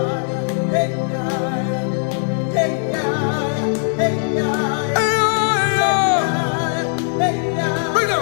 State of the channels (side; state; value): right; silent; 66 dB below the other